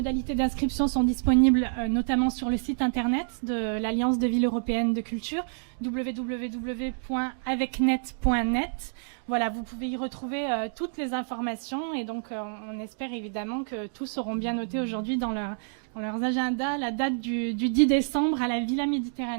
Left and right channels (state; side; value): silent; left; digital silence